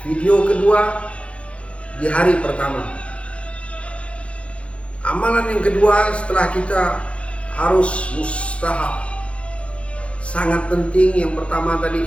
video kedua di hari pertama. Amalan yang kedua setelah kita harus mustahab, sangat penting. Yang pertama tadi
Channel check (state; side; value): late; right; 0.061 ms